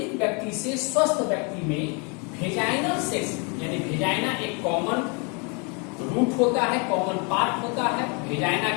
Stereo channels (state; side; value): quieter; right; 33.7 dB